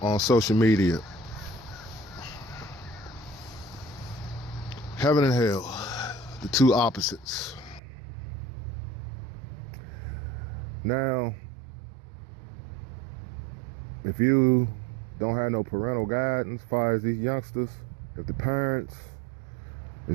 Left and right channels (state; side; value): drops out; left; at 7.8 s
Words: on social media. Heaven and hell, the two opposites. Now, if you don't have no parental guidance as far as these youngsters, if the parents